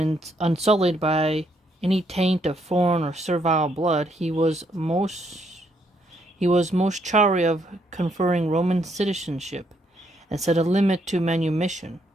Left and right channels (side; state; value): both; normal; correlation 0.73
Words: unsullied by any taint of foreign or servile blood, he was most chary of conferring Roman citizenship, and set a limit to manumission.